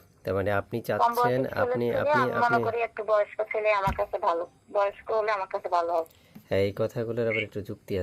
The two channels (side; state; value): both; identical; correlation 1.00